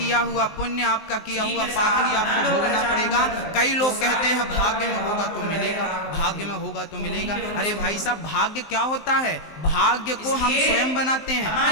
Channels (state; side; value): late; right; 19 ms